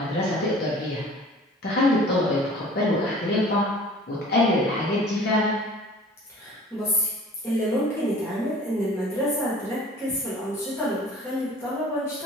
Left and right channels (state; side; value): normal; both; correlation 0.47